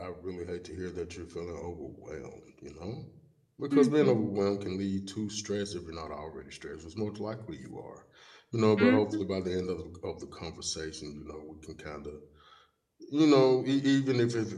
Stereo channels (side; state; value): both; identical; correlation 1.00